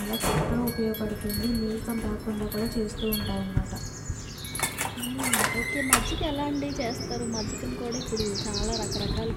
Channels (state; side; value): identical; both; correlation 1.00